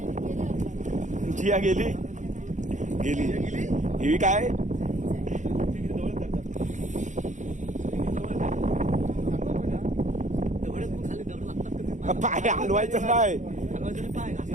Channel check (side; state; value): left; late; 0.35 ms